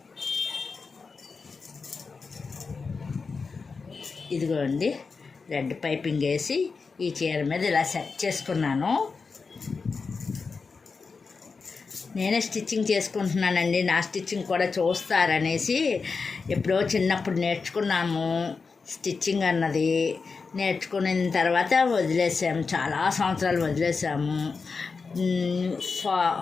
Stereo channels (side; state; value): right; quieter; 4.7 dB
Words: ఇదిగోండి, రెడ్ పైపింగ్ వేసి ఈ చీర మీద ఇలా సెట్ చేసుకున్నాను. నేనే స్టిచ్చింగ్ చేసుకుంటున్నానండి. నా స్టిచ్చింగ్ కూడా చూస్తారనేసి ఎప్పుడో చిన్నప్పుడు నేర్చుకున్నాము స్టిచ్చింగ్ అన్నది. నేర్చుకున్న తర్వాత వదిలేసాము, చాలా సంవత్సరాలు వదిలేసాము.